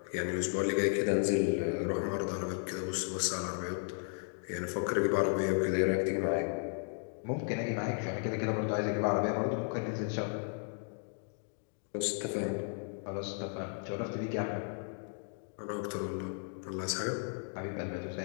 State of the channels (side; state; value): right; silent; 55 dB below the other